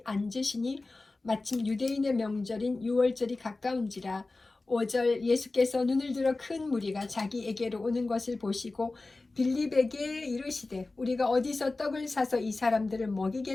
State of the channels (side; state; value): right; quieter; 3.3 dB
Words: 앉으시니 마침 유대인의 명절인 유월절이 가까운지라. 5절 예수께서 눈을 들어 큰 무리가 자기에게로 오는 것을 보시고 빌립에게 이르시되 우리가 어디서 떡을 사서 이 사람들을